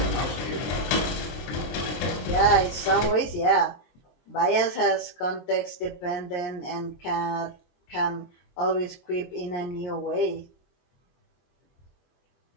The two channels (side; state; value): right; late; 23 ms